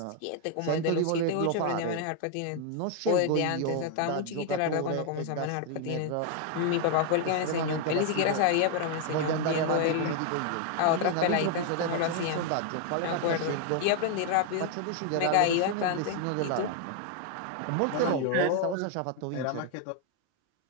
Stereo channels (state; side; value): different; both; correlation 0.00